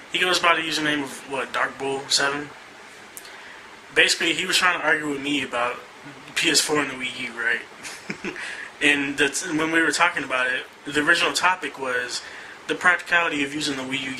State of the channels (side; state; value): both; identical; correlation 1.00